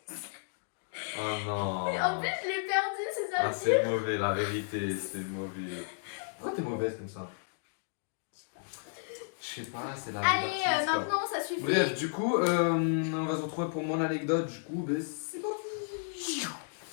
Oh non. Et en plus je l'ai perdue, c'est ça Ah, le c'est mauvais, la vérité, c'est mauvais. Pourquoi t'es mauvaise comme ça? Je sais pas, c'est la vie Allez, d'artiste, quoi. maintenant ça suffit. Bref, du coup, on va se retrouver pour mon anecdote, du coup, ben c'est parti.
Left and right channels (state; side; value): silent; right; digital silence